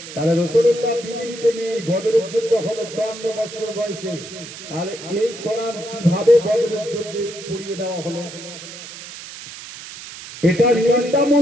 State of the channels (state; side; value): noise; right; hiss, 13 dB below the sound